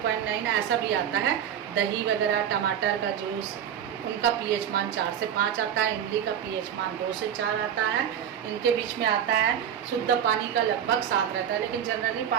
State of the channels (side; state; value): left; quieter; 9.3 dB